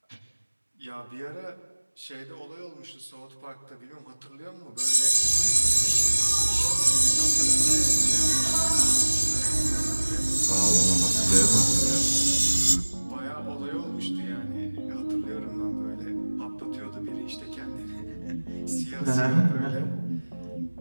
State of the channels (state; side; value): inverted; both; correlation -1.00